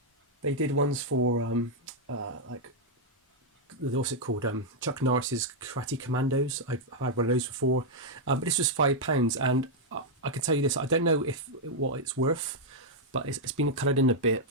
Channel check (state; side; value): normal; both; correlation -0.03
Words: They did ones for like, what's it called? Chuck Norris's Karate Commandos. I've had one of those before, but this was £5, and I can tell you this: I don't know what it's worth, but it's been coloured in a bit.